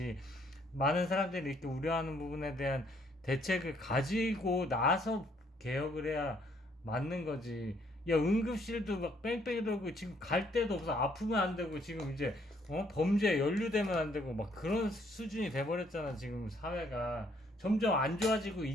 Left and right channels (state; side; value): normal; both; correlation 0.67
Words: 많은 사람들이 이렇게 우려하는 부분에 대한 대책을 가지고 나서 개혁을 해야 맞는 거지. 야, 응급실도 막 뺑뺑이 돌고 지금 갈 데도 없어. 아프면 안 되고 지금 이제 범죄에 연루되면 안 되고 막 그런 수준이 돼버렸잖아. 지금 사회가 점점 안 좋아지고